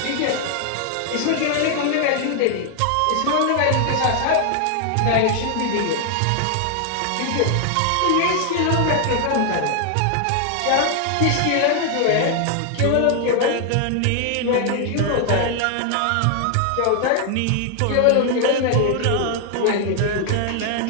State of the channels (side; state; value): both; different; correlation 0.00